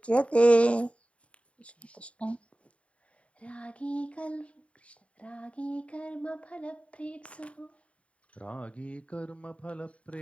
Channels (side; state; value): right; late; 0.063 ms